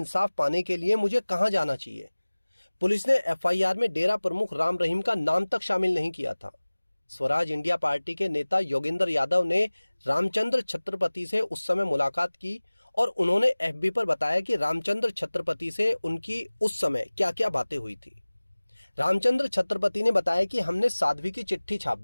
पाने के लिए मुझे कहां जाना चाहिए। पुलिस ने एफआईआर में डेरा प्रमुख राम रहीम का नाम तक शामिल नहीं किया था। स्वराज इंडिया पार्टी के नेता योगेंद्र यादव ने रामचंद्र छत्रपति से उस समय मुलाकात की और उन्होंने एफबी पर बताया कि रामचंद्र छत्रपति से उनकी उस समय क्या क्या बातें हुई थी। रामचंद्र छत्रपति ने बताया कि हमने साध्वी की चिट्ठी छाप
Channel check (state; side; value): inverted; both; correlation -1.00